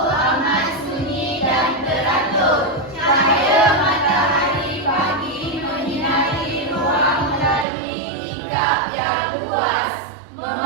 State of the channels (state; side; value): drops out; left; at 7.7 s